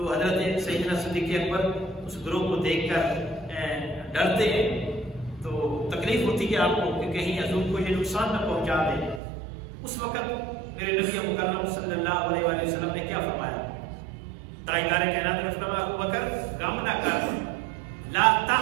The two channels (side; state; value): left; drops out; at 9.2 s